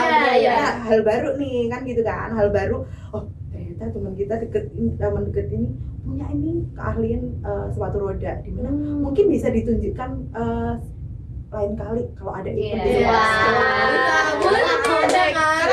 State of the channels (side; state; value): both; identical; correlation 1.00